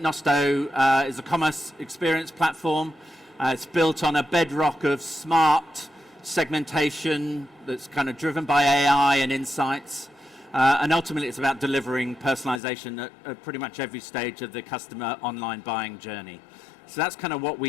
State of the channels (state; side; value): drops out; right; at 12.6 s